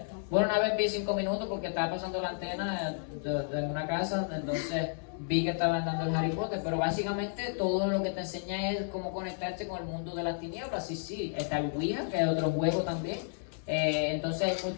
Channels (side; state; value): right; silent; 56 dB below the other